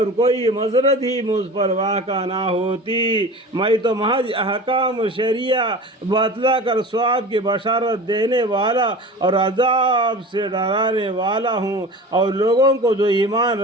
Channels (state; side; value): normal; both; correlation 0.35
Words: کوئی مضرت ہی مجھ پر واقع نہ ہوتی۔ میں تو محض احکام شریعہ بتلا کر ثواب کی بشارت دینے والا اور عذاب سے ڈرانے والا ہوں، اور لوگوں کو جو ایمان